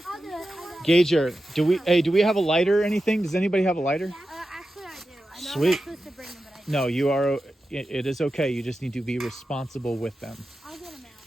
I'll do it. Gager, do we have a lighter or anything? Does anybody have a lighter? Actually, I do. I know Sweet. I'm not supposed to bring them, but I do. No, you are. It is okay. You just need to be responsible with them. I'll get them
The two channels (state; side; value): normal; both; correlation 0.92